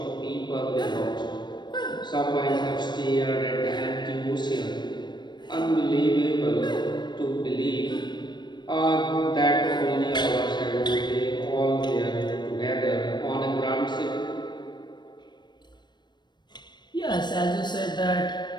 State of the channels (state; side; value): late; right; 0.22 ms